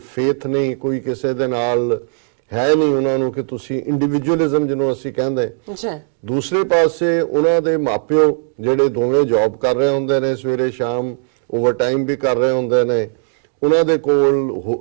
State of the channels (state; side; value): silent; left; digital silence